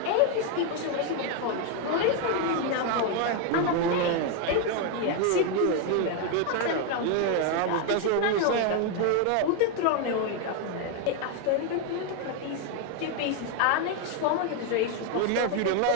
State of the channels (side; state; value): both; different; correlation 0.01